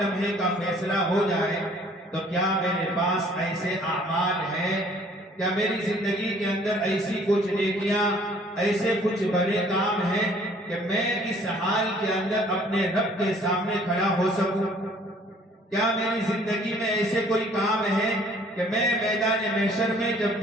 لمحے کا فیصلہ ہو جائے، تو کیا میرے پاس ایسے اعمال ہیں، کیا میری زندگی کے اندر ایسی کچھ نیکیاں، ایسے کچھ بڑے کام ہیں کہ میں اس حال کے اندر اپنے رب کے سامنے کھڑا ہو سکوں؟ کیا میری زندگی میں ایسے کوئی کام ہے کہ میں میدان محشر میں جب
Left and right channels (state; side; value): normal; both; correlation 0.57